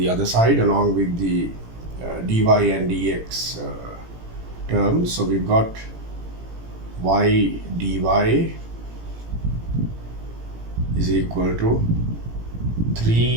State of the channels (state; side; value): late; left; 18 ms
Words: other side, along with the dy and dx terms. So we've got y dy is equal to